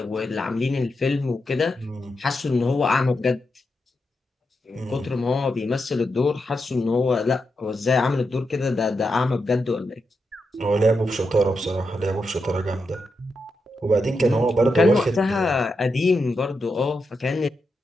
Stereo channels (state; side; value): normal; both; correlation 0.86